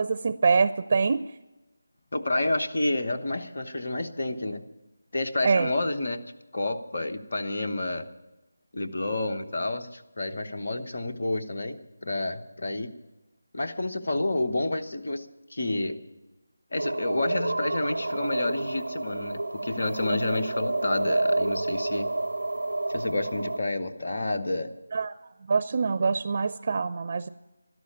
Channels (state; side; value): inverted; both; correlation -0.92